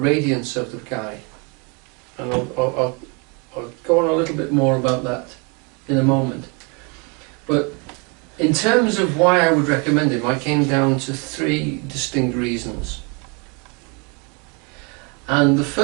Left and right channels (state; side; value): quieter; left; 32.5 dB